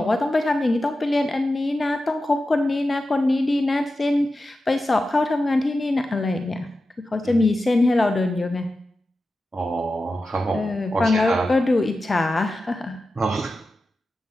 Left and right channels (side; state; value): both; normal; correlation 0.92